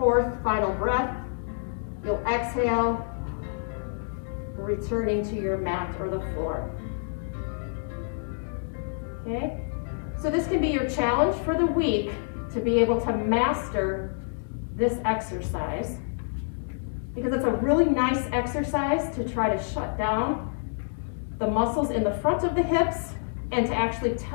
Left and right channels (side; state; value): right; silent; digital silence